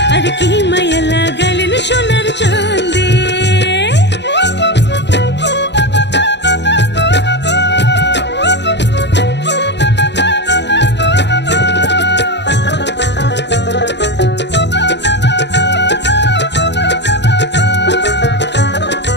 আর কি মায়া লাগাইলেন সোনার চাঁদে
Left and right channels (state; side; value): late; right; 0.51 ms